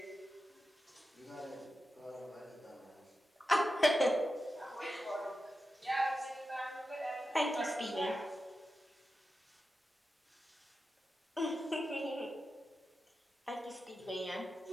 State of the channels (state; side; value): normal; both; correlation 0.91